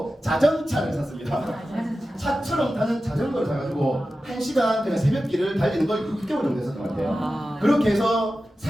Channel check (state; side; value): normal; both; correlation 0.93